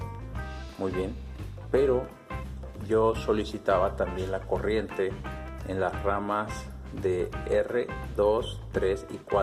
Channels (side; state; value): both; identical; correlation 1.00